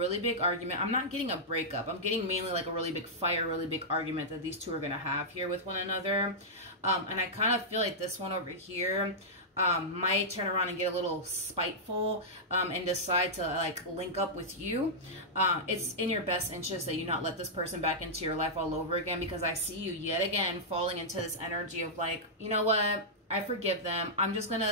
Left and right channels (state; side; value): normal; both; correlation -0.10